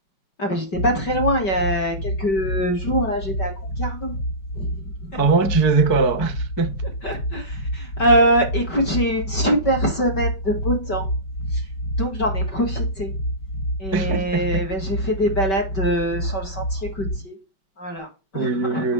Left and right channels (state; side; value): late; right; 5.2 ms